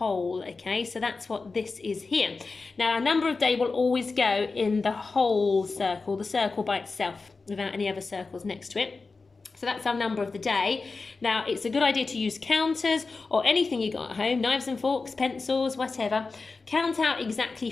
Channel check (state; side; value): quieter; right; 4.1 dB